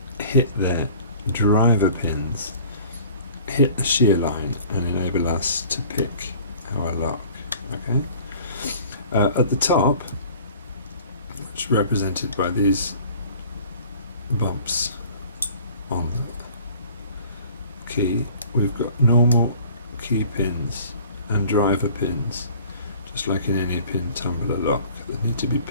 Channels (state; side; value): inverted; both; correlation -0.48